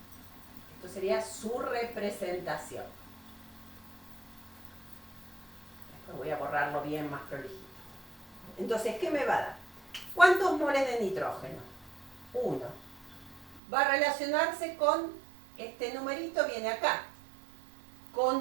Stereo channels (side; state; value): left; drops out; at 13.6 s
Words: Esto sería su representación. Después voy a borrarlo bien más prolijito. Entonces, ¿qué me va a dar? ¿Cuántos moles de nitrógeno? 1. Va a relacionarse con este numerito, viene acá,